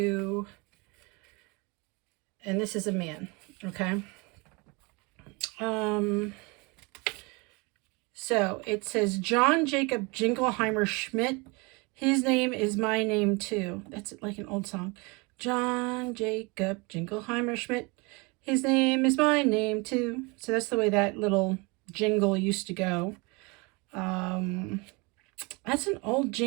And this is a man, okay? So it says John Jacob Jingleheimer Schmidt. His name is my name too. That's like an old song. John Jacob Jingleheimer Schmidt. His name is my name too. So that's the way that little jingle used to go. That's an old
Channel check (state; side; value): quieter; left; 28.1 dB